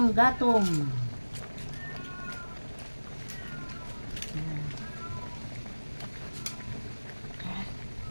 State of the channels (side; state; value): both; inverted; correlation -1.00